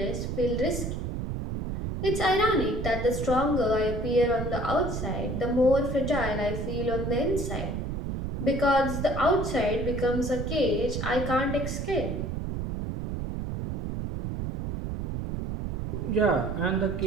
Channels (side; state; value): right; noise; rumble, 4 dB below the sound